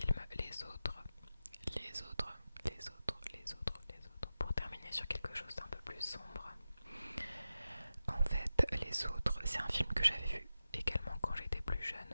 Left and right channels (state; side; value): inverted; both; correlation -0.92